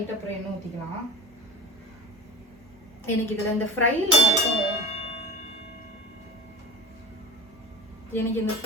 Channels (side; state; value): both; normal; correlation 0.33